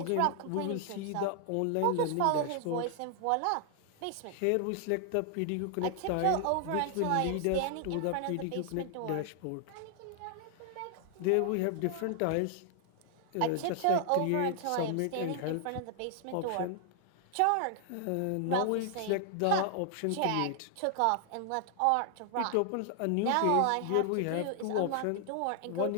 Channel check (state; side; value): different; both; correlation 0.00